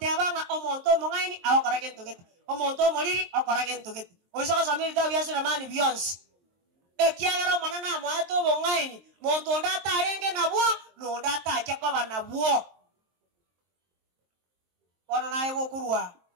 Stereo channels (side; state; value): left; late; 23 ms